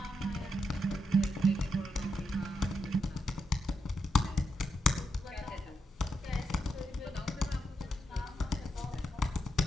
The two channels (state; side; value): normal; both; correlation 0.83